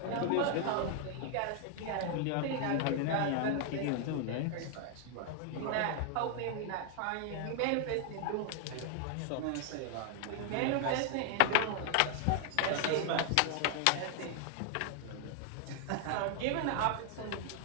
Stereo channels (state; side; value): different; both; correlation 0.00